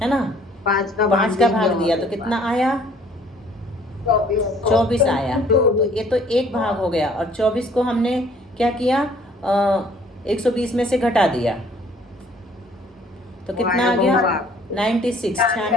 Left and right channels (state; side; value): normal; both; correlation 0.58